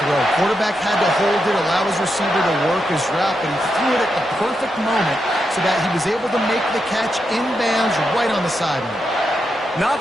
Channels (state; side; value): normal; both; correlation 0.85